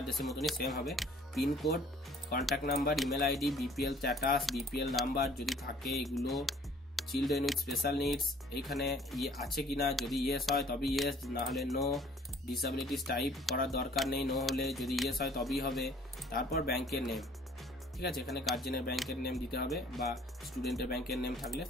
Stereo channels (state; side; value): normal; both; correlation 0.55